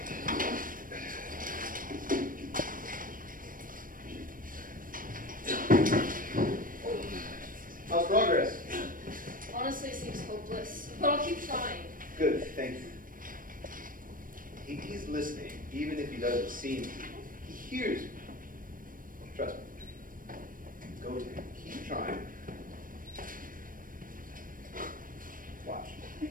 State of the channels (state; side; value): late; left; 0.40 ms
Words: How's progress? Honestly, it seems hopeless, but I'll keep trying. Good, thank you. He's listening, even if he doesn't see me. He hears me. Trust me. Go to him. Keep trying. Watch.